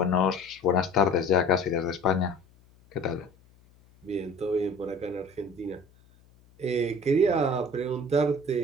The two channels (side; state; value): left; noise; hum, 29 dB below the sound